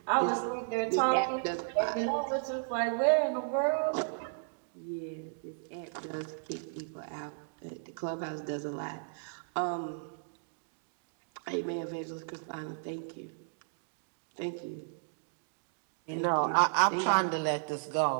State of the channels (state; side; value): silent; left; digital silence